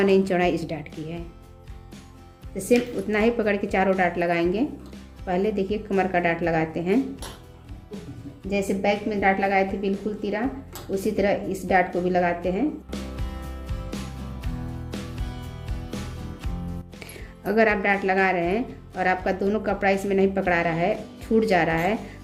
इंच चौड़ाई इस डाट की है। तो सिर्फ उतना ही पकड़ के चारों डाट लगाएंगे। पहले देखिए कमर का डाट लगाते हैं। जैसे बैक में डाट लगाए थे बिल्कुल तिरा, उसी तरह इस डाट को भी लगाते हैं। अगर आप डाट लगा रहे हैं और आपका दोनों कपड़ा इसमें नहीं पकड़ा रहा है, छूट जा रहा है,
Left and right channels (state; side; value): identical; both; correlation 1.00